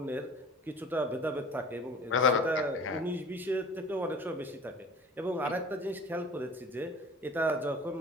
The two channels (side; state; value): both; normal; correlation 0.43